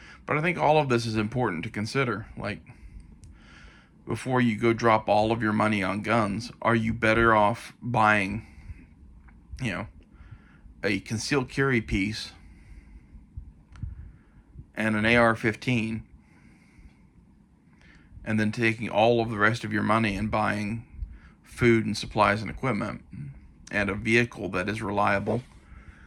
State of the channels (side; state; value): both; identical; correlation 1.00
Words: But I think all of this is important to consider. Like, before you go drop all of your money on guns, are you better off buying, you know, a concealed carry piece and an AR-15, and then taking all of the rest of your money and buying food and supplies and equipment and a vehicle that is reliable,